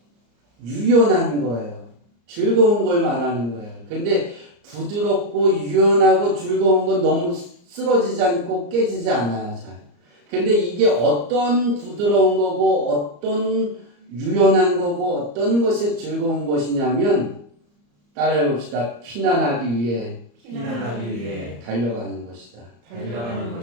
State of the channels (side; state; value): left; late; 34 ms